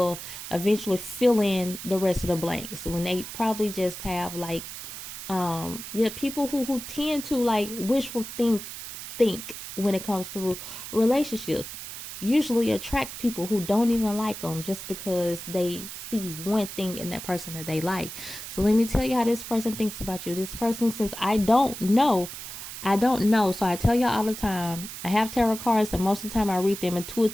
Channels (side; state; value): right; noise; hiss, 10 dB below the sound